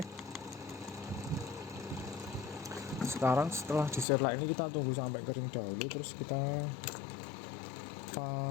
sekarang setelah diserlak ini kita tunggu sampai kering dahulu, terus kita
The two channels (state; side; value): drops out; right; at 4.0 s